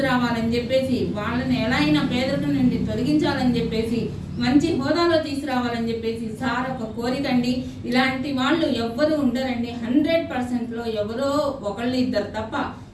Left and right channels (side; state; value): both; identical; correlation 1.00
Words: చెప్పేసి వాళ్ళని ఎలా అయినా పేదరికం నుండి తొలగించాలని చెప్పేసి మంచి హోదాలో తీసుకురావాలని చెప్పేసి సార్ ఒక కోరిక అండి. ఇలాంటి వాళ్ళు ఎవ్వరు ఉండరండి. 100%లో ఎవరో ఒకళ్ళు ఇద్దరు తప్ప